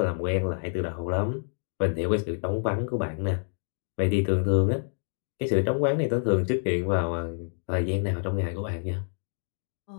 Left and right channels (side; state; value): right; silent; digital silence